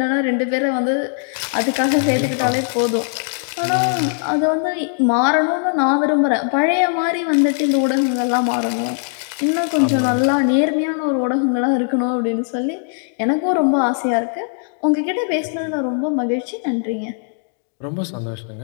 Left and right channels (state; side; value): silent; right; 56 dB below the other